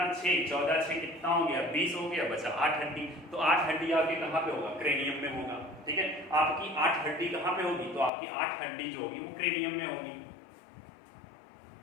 6, 14 6 कितना हो गया, 20 हो गया, बचा 8 हड्डी। तो 8 हड्डी आपके कहाँ पे होगा, क्रेनियम में होगा। ठीक है, आपकी 8 हड्डी कहाँ पे होगी, तो आपकी 8 हड्डी जो होगी वो क्रेनियम में होगी।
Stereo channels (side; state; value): right; drops out; at 8.1 s